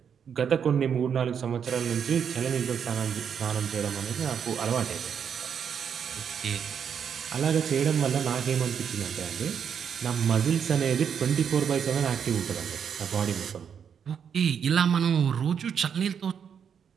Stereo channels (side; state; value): left; quieter; 7.5 dB